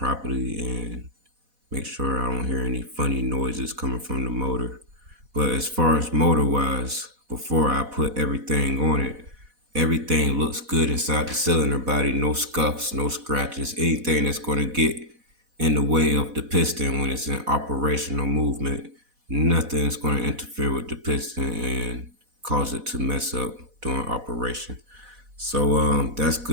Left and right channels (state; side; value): late; left; 4.1 ms